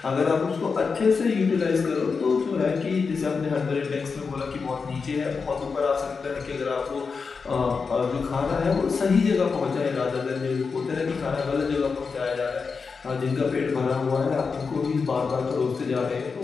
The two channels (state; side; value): quieter; right; 5.1 dB